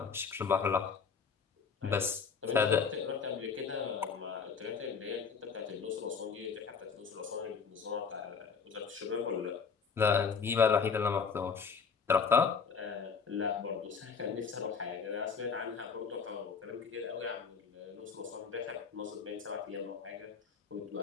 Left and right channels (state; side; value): quieter; right; 5.8 dB